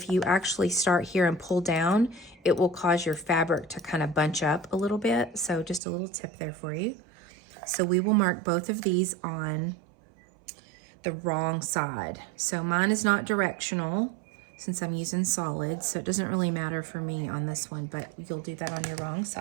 you actually start here and pull down, it will cause your fabric to kind of bunch up a little bit. So just a little tip there for you. So we will mark both of these on the wrong side. So mine is not directional since I'm using solids, so it doesn't really matter for me on this one, but you'll do that on your wrong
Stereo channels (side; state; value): left; drops out; at 5.8 s